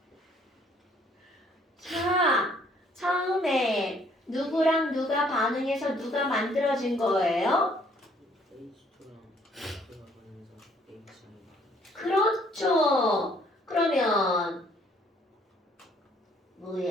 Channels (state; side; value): normal; both; correlation 0.63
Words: 자, 처음에 누구랑 누가 반응해서 누가 만들어진 거예요? H2랑 X가 보면서 H이 그렇죠. 그러면